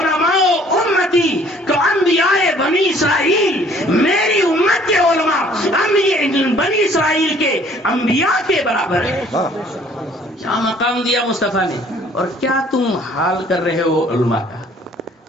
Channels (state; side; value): normal; both; correlation 0.57